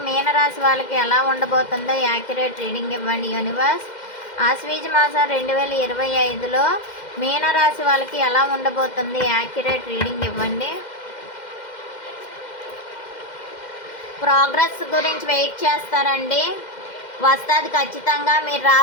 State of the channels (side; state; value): right; late; 2.1 ms